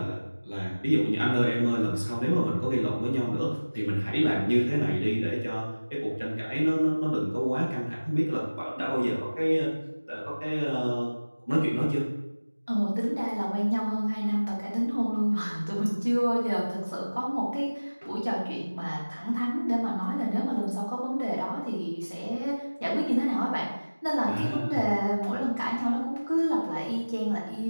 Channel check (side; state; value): both; inverted; correlation -1.00